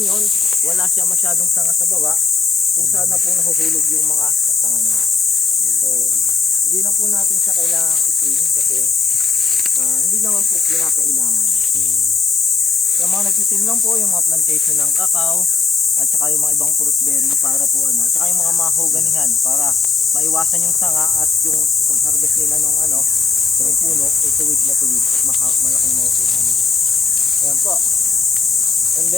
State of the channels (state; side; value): quieter; right; 5.1 dB